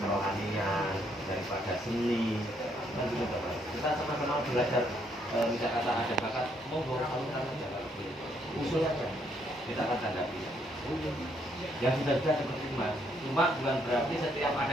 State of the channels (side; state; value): both; normal; correlation 0.71